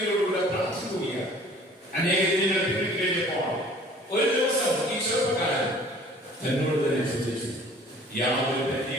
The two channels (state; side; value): normal; both; correlation 0.50